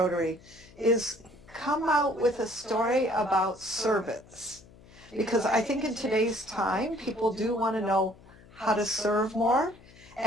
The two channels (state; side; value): noise; left; hum, 23 dB below the sound